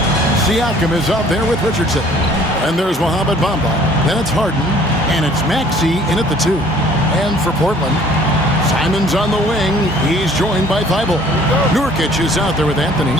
Siakam is out there with Richardson. And there's Mohamed Bamba. Then it's Harden. And it's Maxey in at the 2. And for Portland, Simon's on the wing. He's joined by Thybulle. Nurkic is out there with Anthony.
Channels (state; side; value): normal; both; correlation 0.55